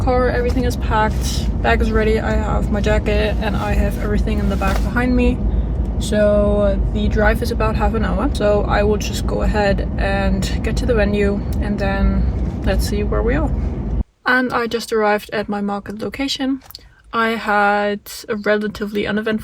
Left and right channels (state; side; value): identical; both; correlation 1.00